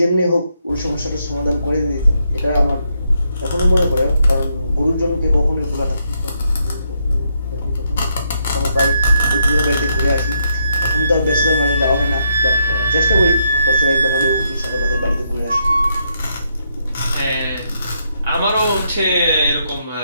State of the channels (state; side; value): inverted; both; correlation -0.77